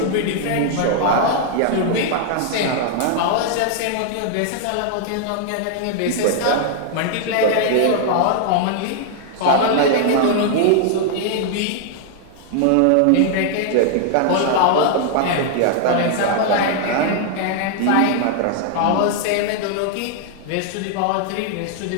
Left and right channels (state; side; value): different; both; correlation 0.00